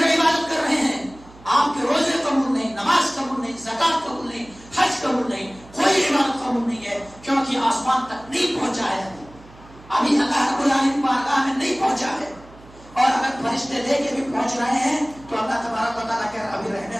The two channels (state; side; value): noise; right; hum, 22 dB below the sound